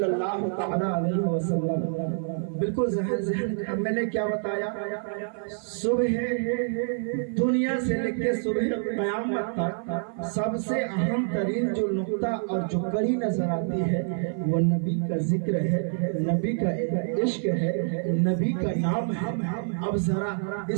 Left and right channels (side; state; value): left; silent; 55 dB below the other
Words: اللہ تعالی علیہ وسلم۔ بالکل ذہن میں نے کیا بتایا، صبح دنیا سے لے کے صبح قیامت تک سب سے اہم ترین جو نقطہ اور جو کڑی نظر آتی ہے وہ نبی کا ذکر ہے، نبی کا عشق ہے، نبی کا نام ہے۔ اب ذرا